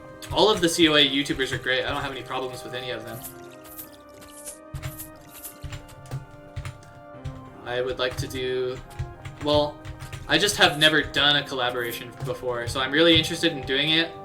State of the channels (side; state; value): both; identical; correlation 1.00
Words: all of the COA YouTubers are great. I don't have any problems with any of them. I would like to do... Well, I just have never done a collaboration before, so I'm really interested in doing it